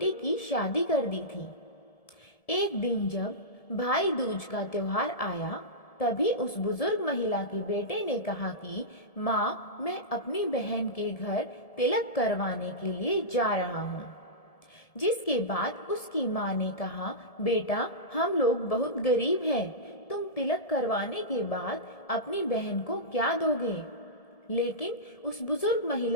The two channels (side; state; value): right; late; 1.7 ms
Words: की शादी कर दी थी। एक दिन जब भाई दूज का त्योहार आया, तभी उस बुजुर्ग महिला के बेटे ने कहा कि माँ, मैं अपनी बहन के घर तिलक करवाने के लिए जा रहा हूँ। जिसके बाद उसकी माँ ने कहा, बेटा, हम लोग बहुत गरीब हैं, तुम तिलक करवाने के बाद अपनी बहन को क्या दोगे। लेकिन उस बुजुर्ग